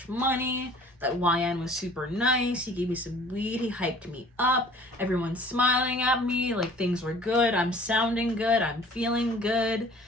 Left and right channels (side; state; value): both; normal; correlation 0.50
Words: money. That YN was super nice. He gave me some weed. He hyped me up. Everyone's smiling at me. Like things were good. I'm sounding good. I'm feeling good.